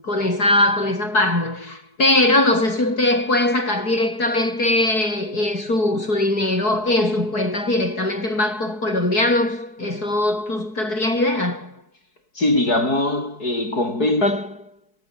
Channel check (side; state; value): right; late; 4.7 ms